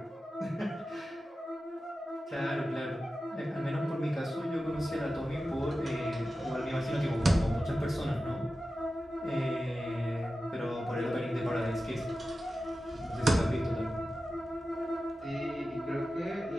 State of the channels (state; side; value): normal; both; correlation 0.93